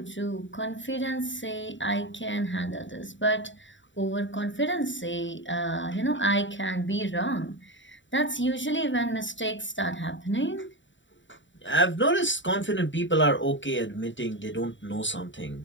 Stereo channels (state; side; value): late; right; 0.54 ms